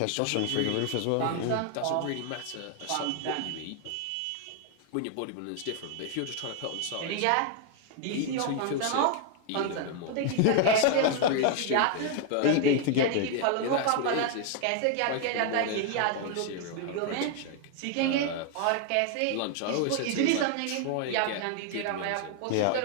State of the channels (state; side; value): different; both; correlation 0.00